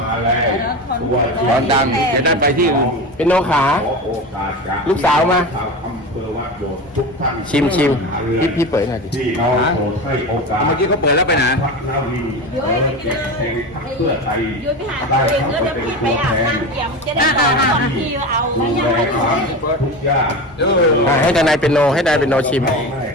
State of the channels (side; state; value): both; normal; correlation 0.26